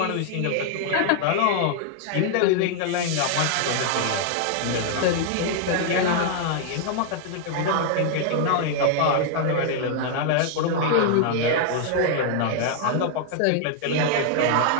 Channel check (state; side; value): different; both; correlation 0.00